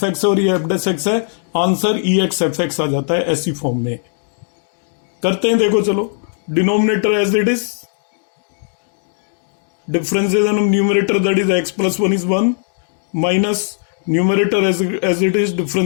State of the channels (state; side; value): silent; right; digital silence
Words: एक्स और ये एफ डैश एक्स है। Answer e x f x आ जाता है ऐसी फॉर्म में। करते हैं, देखो चलो। Denominator as it is, differentiation of numerator that is x plus 1 is 1 minus numerator as it is